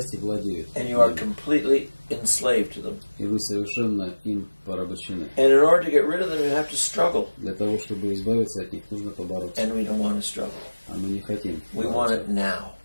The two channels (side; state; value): both; inverted; correlation -1.00